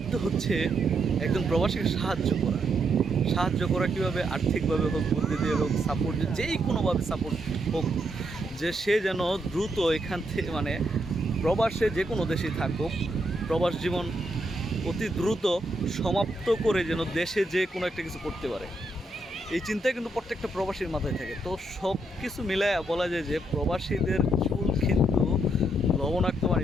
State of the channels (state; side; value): normal; both; correlation 0.78